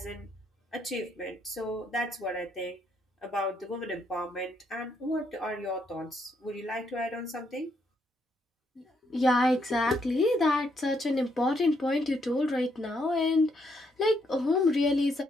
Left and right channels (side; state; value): both; normal; correlation 0.75